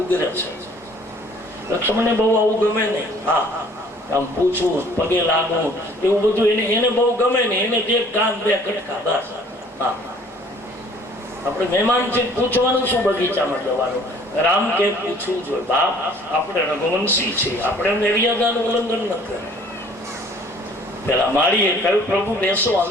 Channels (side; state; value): both; normal; correlation 0.55